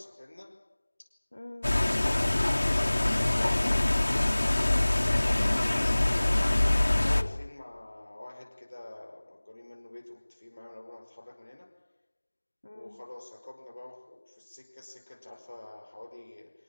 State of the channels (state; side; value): inverted; both; correlation -1.00